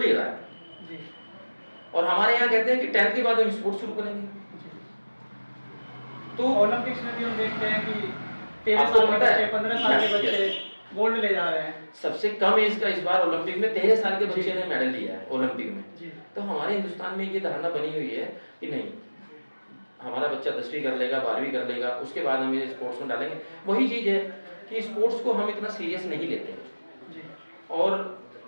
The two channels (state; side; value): inverted; both; correlation -1.00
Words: ले रहा है जी। और हमारे यहाँ कहते हैं कि 10th के बाद हम स्पोर्ट्स शुरू करेंगे। तो ओलंपिक्स में भी हम देखते हैं कि 13 आपको साल के पता है? बच्चे, 15 साल के Yes, बच्चे गोल्ड ले जा रहे हैं। सबसे कम एज का इस बार ओलंपिक में 13 साल के बच्चे ने मेडल लिया है ओलंपिक में। जी। तो हमारे हिंदुस्तान में ये धारणा बनी हुई है कि नहीं, हमारा बच्चा 10वीं कर लेगा, 12वीं कर लेगा, उसके बाद हम ये स्पोर्ट्स में डालेंगे। वही चीज़ है कि स्पोर्ट्स को हम इतना सीरियस नहीं लेते हैं जी। और